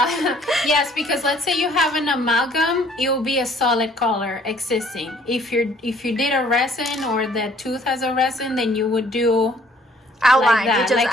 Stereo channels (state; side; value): normal; both; correlation 0.59